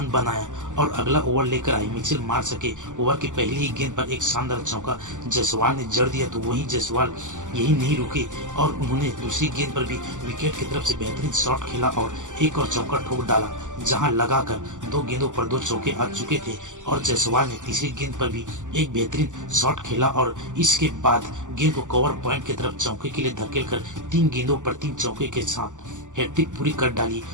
बनाया और अगला ओवर लेकर आई मिचेल मार्श के ओवर की पहली ही गेंद पर एक शानदार चौका जायसवाल ने जड़ दिया। तो वहीं जायसवाल यही नहीं रुके और उन्होंने दूसरी गेंद पर भी विकेट की तरफ से बेहतरीन शॉट खेला और एक और चौका ठोक डाला, जहां लगाकर 2 गेंदों पर 2 चौके आ चुके थे और जायसवाल ने तीसरी गेंद पर भी एक बेहतरीन शॉट खेला और इसके बाद गेंद को कवर पॉइंट की तरफ चौके के लिए धकेलकर 3 गेंदों पर 3 चौके के साथ हैट्रिक पूरी कर डाली।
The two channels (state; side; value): late; left; 0.87 ms